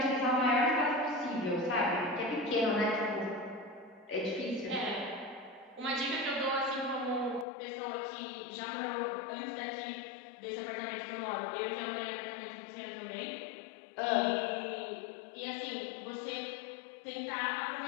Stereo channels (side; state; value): right; drops out; at 7.5 s